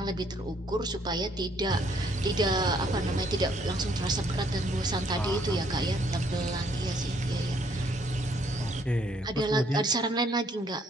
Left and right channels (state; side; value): normal; both; correlation 0.66